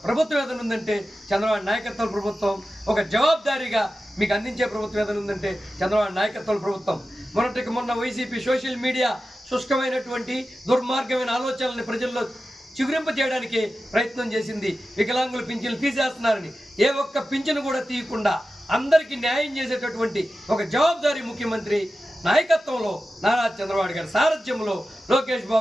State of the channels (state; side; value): normal; both; correlation 0.93